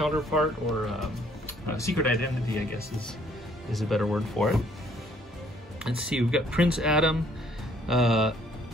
or secret identity, I guess is a better word for it. Let's see, we've got Prince Adam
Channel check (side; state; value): both; normal; correlation 0.63